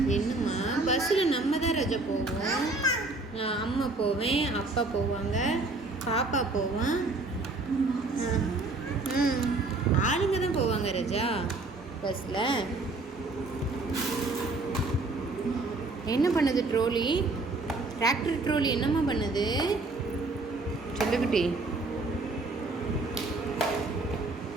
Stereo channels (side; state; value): left; quieter; 3.3 dB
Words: என்னம்மா? பஸ்ஸில் நம்ம தான் ரஜா போவோம். அம்மா போவேன், அப்பா போவாங்க, பாப்பா போவான். ஆளுங்க தான் போவாங்க ரஜா பஸ்ஸில். என்ன பண்ணுது ட்ரோலி? டிராக்டர் ட்ரோலி என்னம்மா பண்ணுது? சொல்லுக்குட்டி